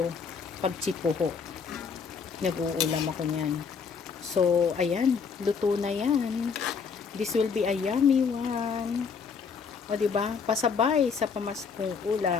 pag chipuho. Nag-uulam ako niyan. So, ayan, luto na yan. This will be a yummy one. O, diba? Pasabay sa pamaskong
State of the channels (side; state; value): right; quieter; 5.8 dB